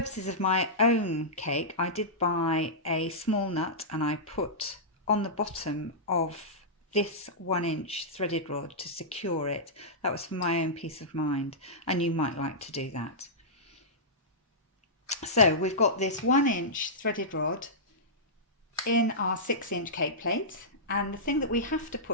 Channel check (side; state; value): both; normal; correlation -0.14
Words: of my own cake, I did buy a small nut and I put on the bottom of this 1 inch threaded rod to secure it. That was for my own peace of mind, and you might like to do that. So we've got this 1 inch threaded rod in our 6 inch cake plate, and the thing that we have to